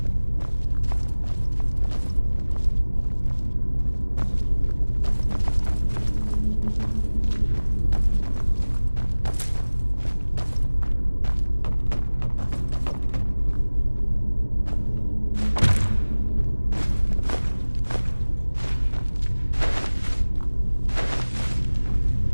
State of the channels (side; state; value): both; inverted; correlation -1.00